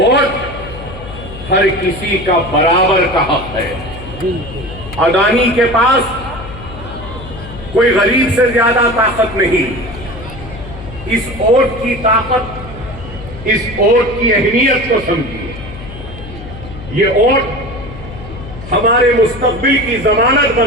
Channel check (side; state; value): left; noise; hum, 13 dB below the sound